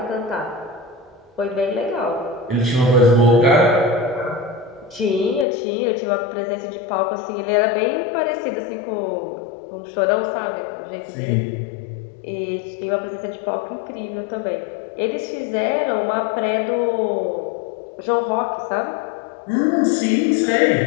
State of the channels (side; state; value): right; drops out; at 5.5 s